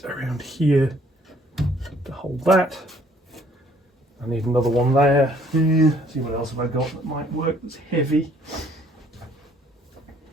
around here to hold that. I need another one there. See what else have I got that might work that's heavy.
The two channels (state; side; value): normal; both; correlation 0.61